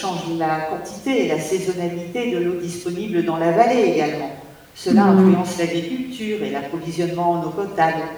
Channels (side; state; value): both; identical; correlation 1.00